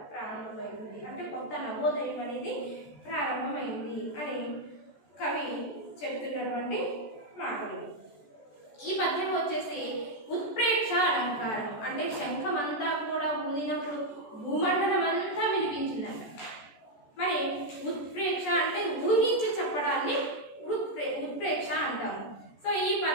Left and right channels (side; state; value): right; late; 14 ms